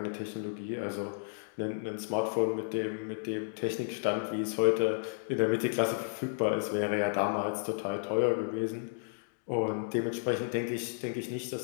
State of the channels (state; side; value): silent; right; digital silence